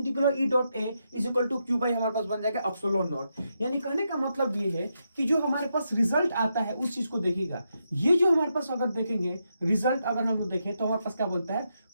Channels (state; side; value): inverted; both; correlation -0.83